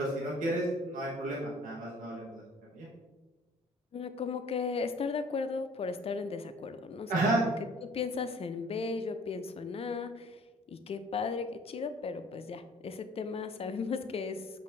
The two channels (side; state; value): both; normal; correlation 0.53